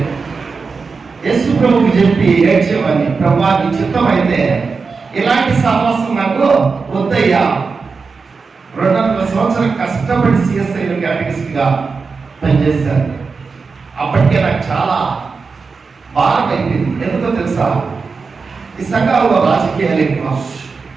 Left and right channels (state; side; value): quieter; left; 4.7 dB